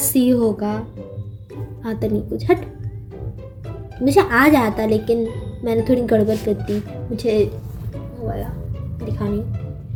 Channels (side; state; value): both; identical; correlation 1.00